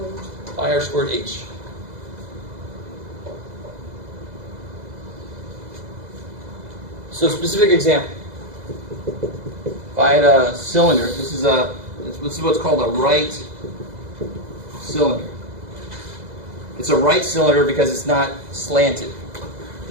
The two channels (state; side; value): late; left; 2.0 ms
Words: Pi r squared h. So specific example. If I had a cylinder, this is what's called a right cylinder. It's a right cylinder because it's not slanted.